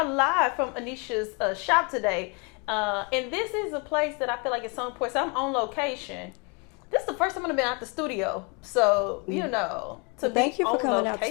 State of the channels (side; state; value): right; quieter; 32.9 dB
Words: live from Aneesha's shop today. And this is a place that I feel like it's so important. So I'm on location. This is the first time I've been out the studio. So, you know, to Thank be you for on coming location. out